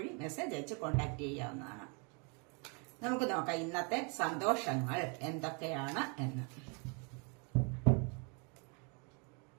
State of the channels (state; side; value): quieter; left; 34.8 dB